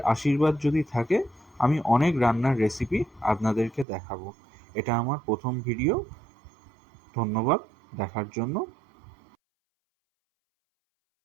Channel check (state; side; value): drops out; left; at 3.9 s